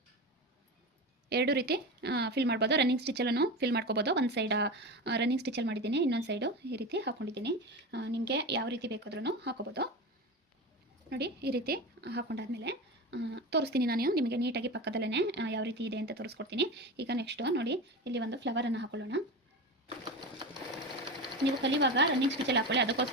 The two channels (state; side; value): normal; both; correlation 0.25